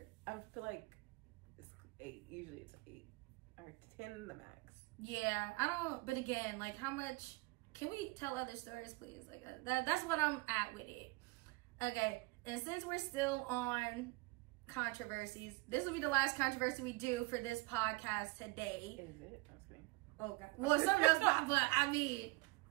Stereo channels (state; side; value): quieter; left; 24.6 dB